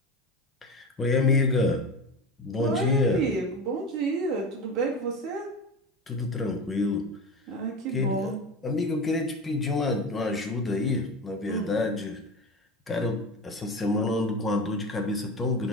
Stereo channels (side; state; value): both; normal; correlation 0.26